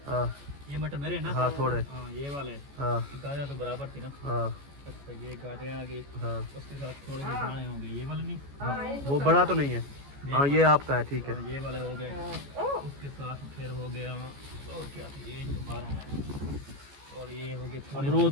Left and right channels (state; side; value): late; left; 14 ms